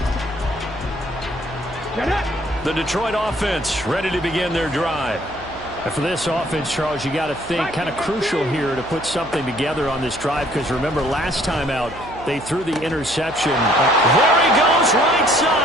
The Detroit offense ready to begin their drive. And for this offense, Charles, you got to think kind of crucial here to put something together on this drive, because remember last time out they threw the interception. There he goes, right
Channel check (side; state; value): right; noise; hum, 18 dB below the sound